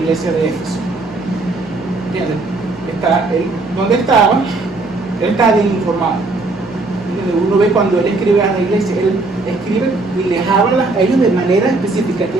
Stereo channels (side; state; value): left; quieter; 3.3 dB